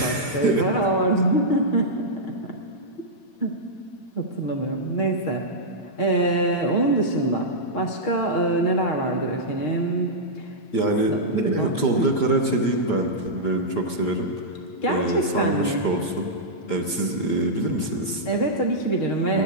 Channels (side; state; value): right; late; 8.8 ms